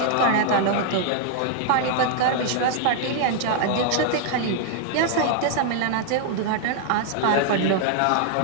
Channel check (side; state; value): both; different; correlation 0.00